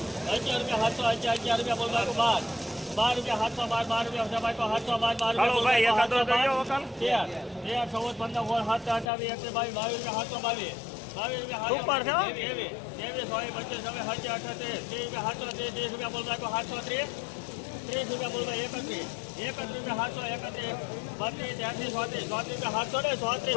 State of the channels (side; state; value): right; drops out; at 9.1 s